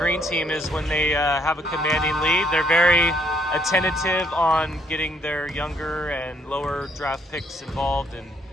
team is when they have a commanding lead, they're very attentive on getting their younger and lower draft picks involved and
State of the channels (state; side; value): normal; both; correlation 0.68